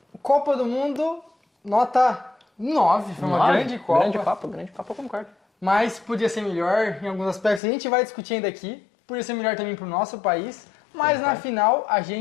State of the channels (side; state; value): right; drops out; at 7.6 s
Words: Copa do Mundo, nota 9. Foi uma 9? grande Copa. Grande Copa, eu concordo. Mas podia ser melhor em alguns aspectos. A gente vai discutir ainda aqui. Podia ser melhor também para o nosso país. Mas na final a